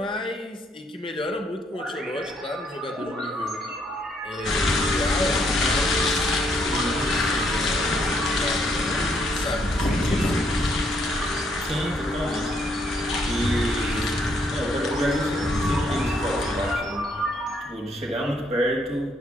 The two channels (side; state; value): both; normal; correlation 0.71